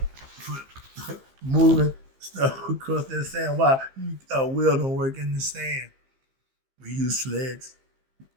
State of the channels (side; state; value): left; late; 15 ms